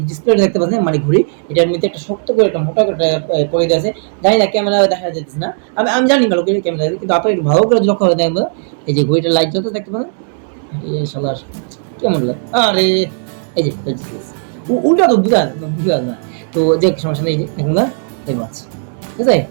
ডিসপ্লে দেখতে পাচ্ছেন মানে ঘড়ি, এটার মধ্যে একটা শক্ত করে একটা মোটা করে পরে দেওয়া আছে। জানি না ক্যামেরা দেখা যেতেছে না, আমি জানি ভালো করে ক্যামেরা, কিন্তু আপনারা একটু ভালো করে লক্ষ্য করে দেখেন। এই যে ঘড়িটার লাইট জ্বলতে দেখতে পারেন, এই শালার কেমন লাগে, আরে এই যে উল্টা তো বুঝা না। তো যে সমস্যা নেই, দেখুন না এই মাছ, ঠিক আছে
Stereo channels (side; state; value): left; silent; digital silence